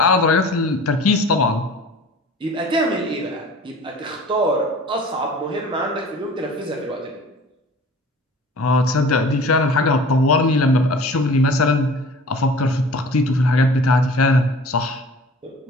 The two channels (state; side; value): normal; both; correlation 0.44